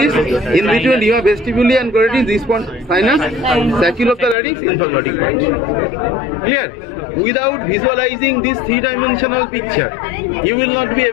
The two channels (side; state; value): right; drops out; at 4.4 s